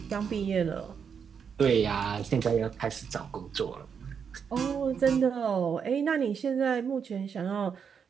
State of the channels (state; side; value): quieter; left; 6.8 dB